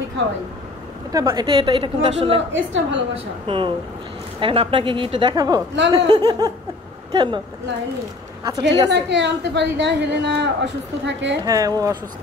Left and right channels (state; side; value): quieter; right; 3.2 dB